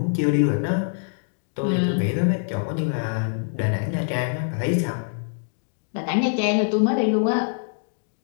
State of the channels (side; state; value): right; silent; digital silence